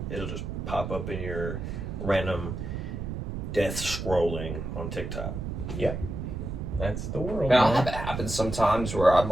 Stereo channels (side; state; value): right; noise; rumble, 5 dB below the sound